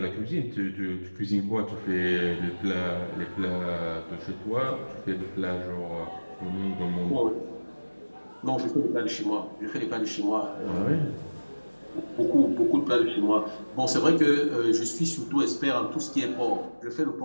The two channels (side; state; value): both; inverted; correlation -1.00